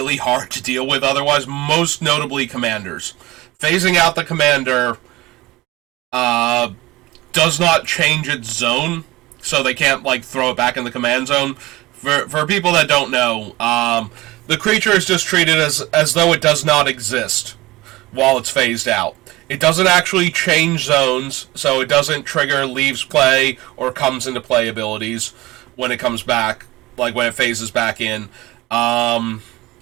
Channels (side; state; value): left; quieter; 19.8 dB